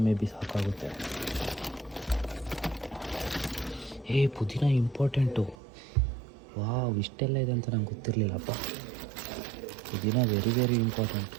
ಮೇ ಬಿ ಸಾಕಾಗುತ್ತೆ. ಪುದೀನ ಇಂಪಾರ್ಟೆಂಟು. ವಾವ್, ಇಷ್ಟೆಲ್ಲ ಇದೆ ಅಂತ ನಂಗೆ ಗೊತ್ತಿರಲಿಲ್ಲಪ್ಪ. ಪುದೀನ ವೆರಿ ವೆರಿ ಇಂಪಾರ್ಟೆಂಟ್.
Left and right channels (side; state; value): left; drops out; at 5.6 s